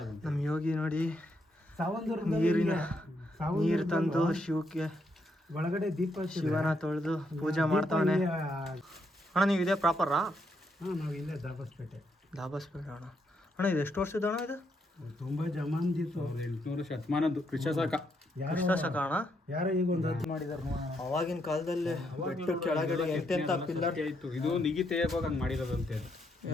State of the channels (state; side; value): normal; both; correlation 0.77